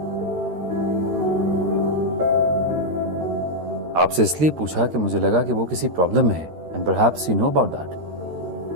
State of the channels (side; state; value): left; late; 13 ms